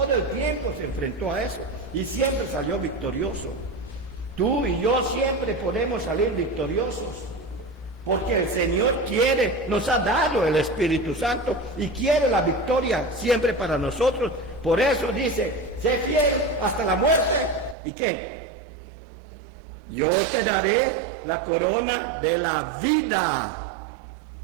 el tiempo se enfrentó a eso y siempre salió victorioso. Tú y yo siempre podemos salir victoriosos, porque el Señor quiere, nos ha dado el Espíritu Santo y quiere la victoria siempre para nosotros. Por eso dice, sé fiel hasta la muerte. ¿Y qué? Yo te daré la corona de la vida.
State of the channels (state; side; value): drops out; left; at 17.8 s